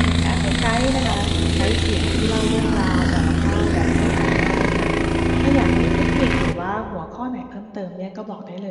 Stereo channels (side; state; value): both; identical; correlation 1.00